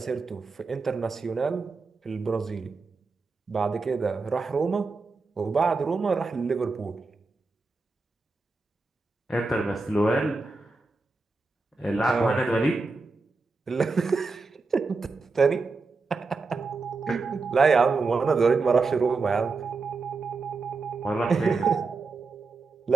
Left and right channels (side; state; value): left; quieter; 4.0 dB